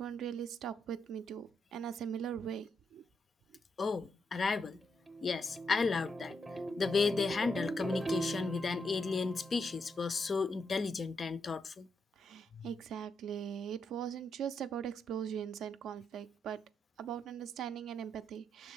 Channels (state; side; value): normal; both; correlation 0.81